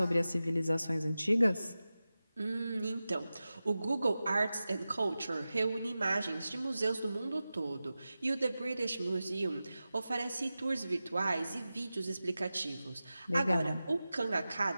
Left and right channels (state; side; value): inverted; both; correlation -0.95